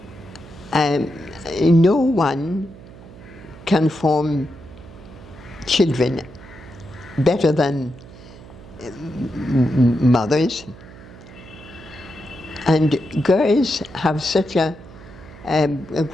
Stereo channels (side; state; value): right; noise; hum, 18 dB below the sound